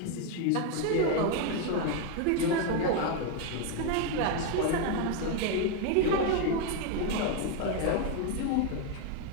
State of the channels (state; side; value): different; both; correlation 0.01